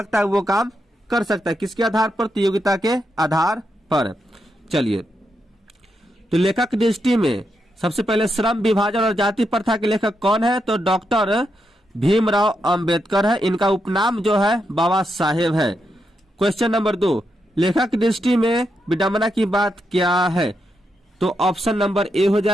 है वो काम कर सकता है। किसके आधार पर? तो योग्यता के आधार पर। चलिए, तो लेखक की दृष्टि में सबसे पहले श्रम विभाजन और जाति प्रथा के लेखक कौन है, तो डॉक्टर भीमराव अंबेडकर है। इनका उपनाम जो है बाबा साहेब है। क्वेश्चन नंबर 2, लेखक की दृष्टि में विडंबना की बात क्या है, तो ऑप्शन नंबर ए हो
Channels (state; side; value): normal; both; correlation 0.83